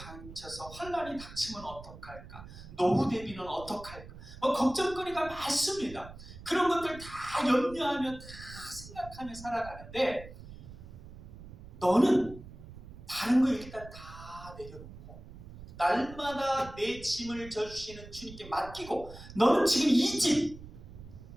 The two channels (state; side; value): noise; right; rumble, 15 dB below the sound